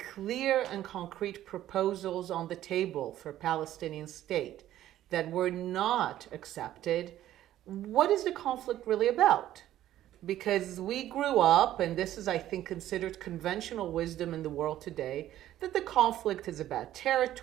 clear and concrete proposals on the table for a Palestinian state that were not accepted, what is the conflict really about? Because we grew up, and this is, I think, considered conventional wisdom in the world today, that the conflict is about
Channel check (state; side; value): quieter; left; 13.0 dB